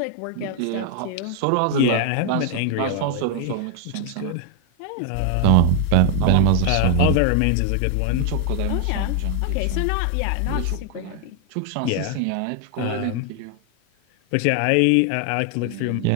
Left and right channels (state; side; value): different; both; correlation 0.00